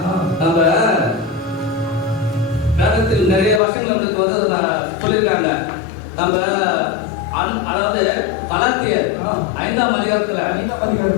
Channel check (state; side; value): drops out; right; at 3.6 s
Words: நிறைய வருஷங்கள் வந்து சொல்லியிருக்காங்க. நம்ம அதாவது கலாத்தியர் 5ஆம் அதிகாரத்துல